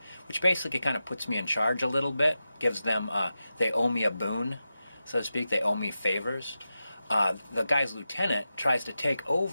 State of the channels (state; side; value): inverted; both; correlation -0.91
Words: which basically kind of puts me in charge a little bit, gives them, they owe me a boon, so to speak, they owe me favors. The guy's lieutenant tries to take